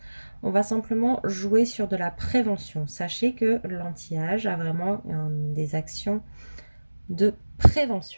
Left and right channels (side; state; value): both; inverted; correlation -1.00